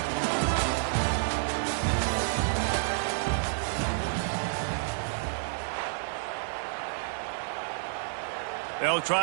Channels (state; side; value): silent; left; 58 dB below the other